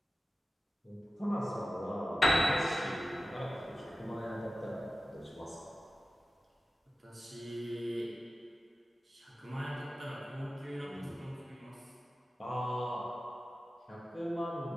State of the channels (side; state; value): both; normal; correlation 0.94